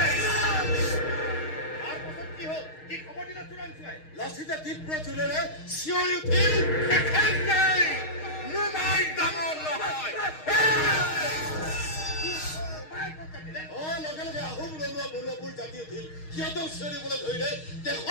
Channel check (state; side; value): late; right; 6.4 ms